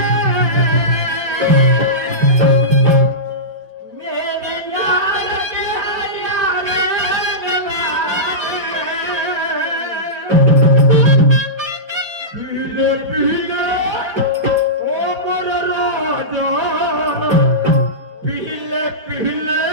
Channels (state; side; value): late; left; 4.8 ms